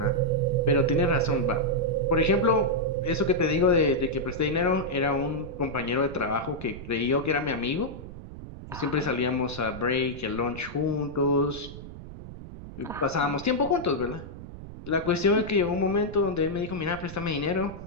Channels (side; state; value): right; noise; rumble, 13 dB below the sound